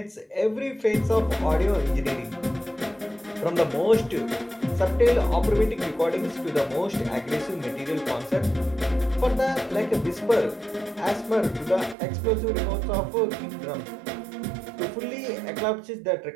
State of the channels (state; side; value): drops out; left; at 12.0 s